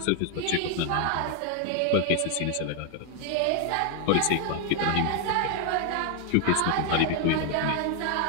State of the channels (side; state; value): both; different; correlation 0.00